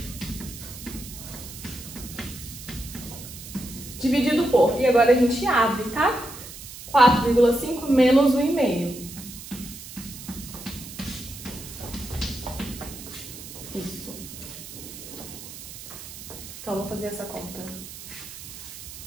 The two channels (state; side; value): noise; right; hiss, 13 dB below the sound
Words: Dividido por. E agora a gente abre, tá? 4,5 menos 1,5. Isso. Então, vamos fazer essa conta.